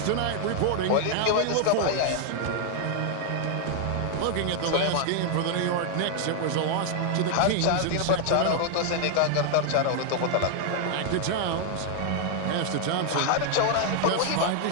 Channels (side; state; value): both; different; correlation 0.00